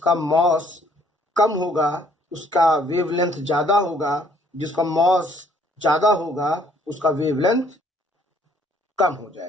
मास कम होगा उसका वेवलेंथ ज्यादा होगा, जिसका मास ज्यादा होगा उसका वेवलेंथ कम हो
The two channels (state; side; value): normal; both; correlation 0.62